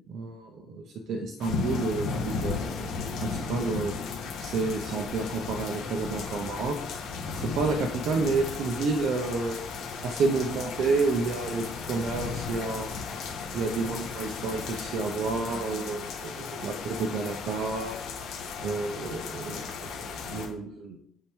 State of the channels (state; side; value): normal; both; correlation 0.60